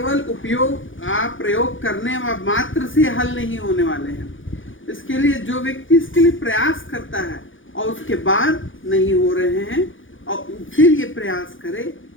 प्रयोग करने मात्र से हल नहीं होने वाले हैं। इसके लिए जो व्यक्ति इसके लिए प्रयास करता है और उसके बाद नहीं हो रहे हैं और फिर ये प्रयास करे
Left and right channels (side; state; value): right; late; 0.57 ms